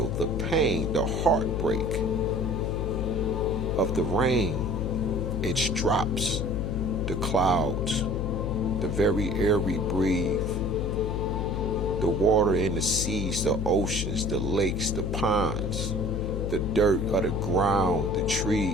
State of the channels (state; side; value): noise; left; hum, 2 dB below the sound